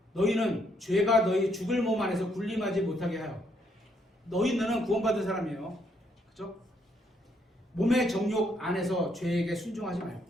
너희는 죄가 너희 죽을 몸 안에서 군림하지 못하게 하여. 너희는 구원받은 사람이에요. 그죠? 몸의 정욕 안에서 죄에게 순종하지 말고.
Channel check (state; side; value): normal; both; correlation 0.72